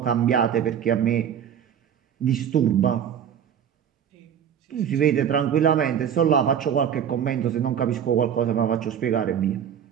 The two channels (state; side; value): quieter; left; 8.8 dB